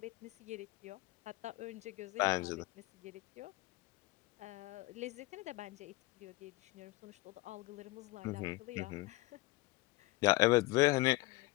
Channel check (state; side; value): quieter; right; 20.8 dB